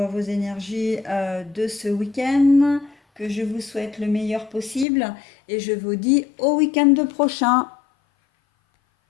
énergies de ce week-end, que je vous souhaite le meilleur possible et je vous dis au week-end prochain.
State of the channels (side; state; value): right; drops out; at 4.9 s